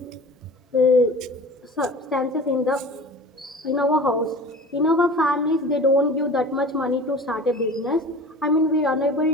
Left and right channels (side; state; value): both; normal; correlation 0.39